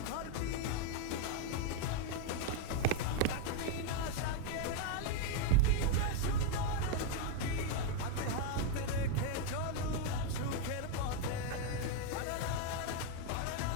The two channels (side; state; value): both; different; correlation 0.01